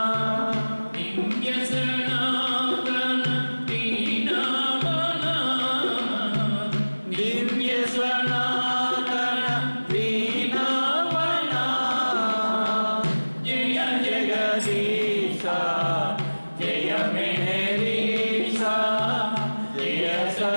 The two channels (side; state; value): both; inverted; correlation -1.00